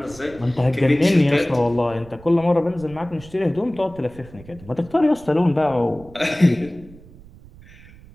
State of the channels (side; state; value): right; noise; rumble, 21 dB below the sound